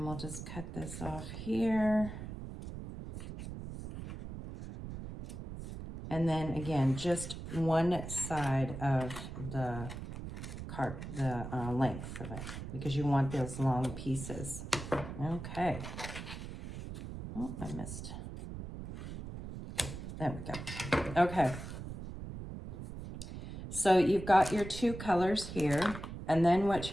we'll just cut this off here. And then again, just one side of the length of it because you want those long pieces. Okay. Oh, I missed. There we go. Okay. So you've got your 2 colors here. And then what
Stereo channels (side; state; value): right; noise; rumble, 9 dB below the sound